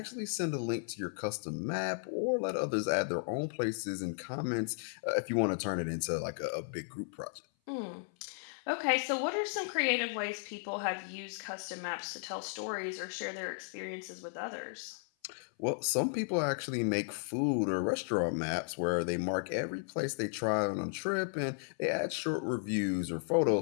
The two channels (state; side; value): silent; right; 55 dB below the other